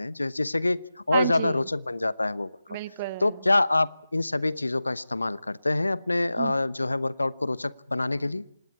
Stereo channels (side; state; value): both; inverted; correlation -0.94